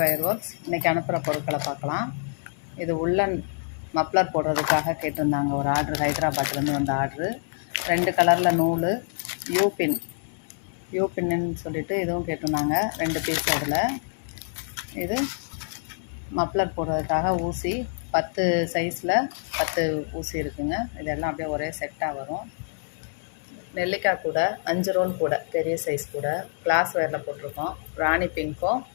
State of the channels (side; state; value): right; silent; 61 dB below the other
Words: works. இன்றைக்கி அனுப்புகிற பொருட்களை பார்க்கலாம். இது உள்ளன் மப்ளர் போடுறதுக்காக கேட்டிருந்தாங்க ஒரு ஆர்டர், ஹைதராபாத்லேருந்து வந்த ஆர்டரு. 2 கலரில் நூல், யூபின்னு சொல்லிட்டு இதுவும் கேட்டிருந்தாங்க. 2 பீஸ். அதில் இது மப்ளர் போடுறதுக்காக ஊசி 10 சைஸில் 10 ஊசி இருக்குங்க. இதெல்லாம் அப்படியே ஒரே செட்டாக வரும். நெல்லிக்காய் கூட 5 ரோல் கூட, பெரிய சைஸ் கூட கிளாஸ் வேரில் போட்டிருக்கோம். ராணி பிங்க்கும்